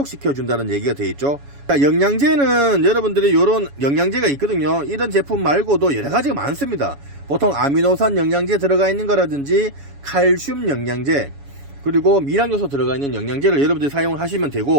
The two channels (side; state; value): left; late; 7.1 ms